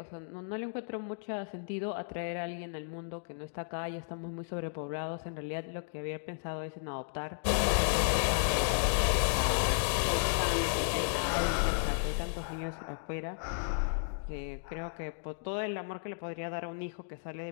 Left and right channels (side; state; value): right; silent; digital silence